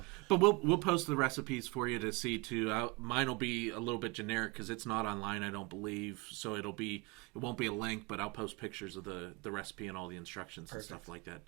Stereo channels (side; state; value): left; quieter; 26.3 dB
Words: but we'll post the recipes for you to see too. Mine will be a little bit generic because it's not online, I don't believe. So it won't be a link, but I'll post pictures of the recipe and all the instructions and stuff like that